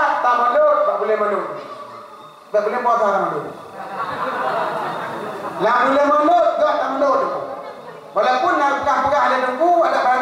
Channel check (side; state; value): both; identical; correlation 1.00